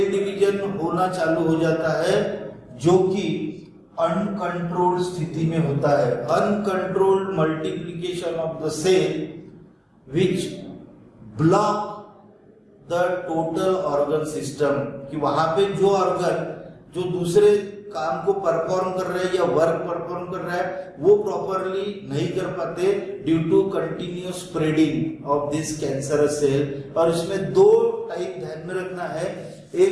डिवीजन होना चालू हो जाता है, जो कि अनकंट्रोल्ड स्थिति में होता है. Uncontrolled multiplication of the cell which block the total organ system, कि वहां पे जो ऑर्गन जो दूसरे काम को परफॉर्म कर रहे हैं या वर्क परफॉर्म कर रहा है वो प्रॉपरली नहीं कर पाते due to continuous spreading of this cancerous cell. और इसमें दो टाइप ध्यान में रखना है.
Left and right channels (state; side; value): identical; both; correlation 1.00